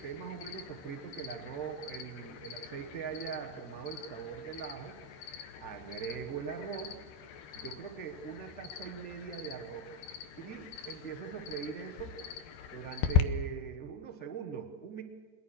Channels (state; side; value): late; right; 13 ms